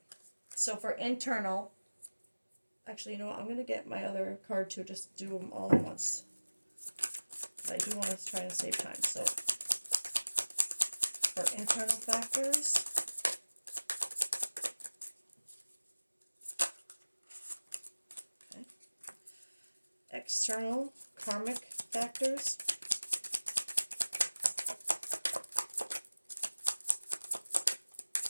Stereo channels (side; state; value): both; inverted; correlation -1.00